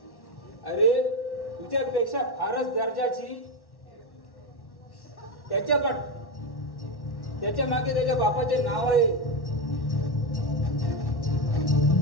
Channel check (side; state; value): right; late; 1.1 ms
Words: अरे तुझ्यापेक्षा फारच दर्जाची त्याच्या मागे त्याच्या बापाचे नाव आहे